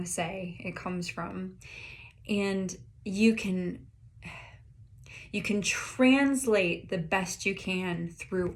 to say it comes from. And you can translate the best you can through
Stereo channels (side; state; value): both; identical; correlation 1.00